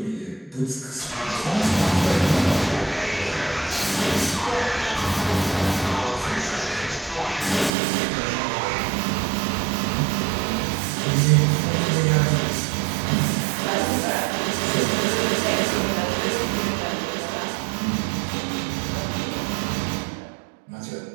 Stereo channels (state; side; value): drops out; left; at 7.7 s